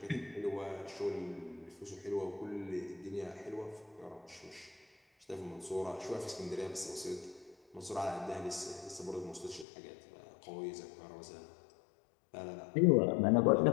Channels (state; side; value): drops out; right; at 9.7 s